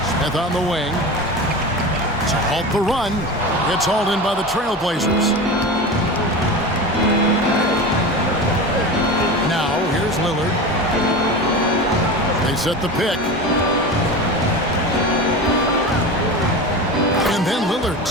Smith on the wing. To halt the run. It's hauled in by the Trailblazers. Now, here's Lillard. They set the pick. And then Lillard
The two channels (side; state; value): both; normal; correlation 0.28